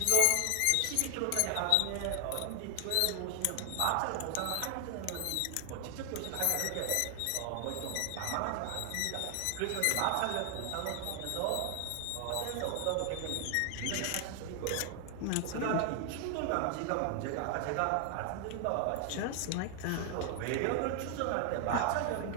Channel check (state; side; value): different; both; correlation 0.00